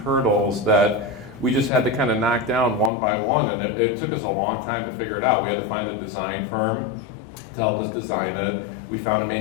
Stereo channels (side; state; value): right; drops out; at 2.9 s